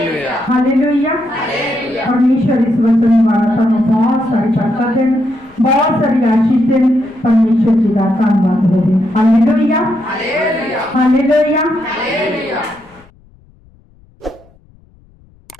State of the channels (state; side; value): noise; left; rumble, 29 dB below the sound